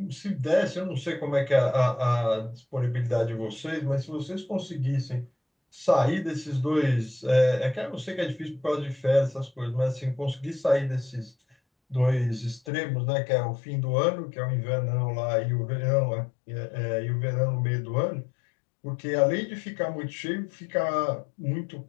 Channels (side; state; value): right; drops out; at 12.7 s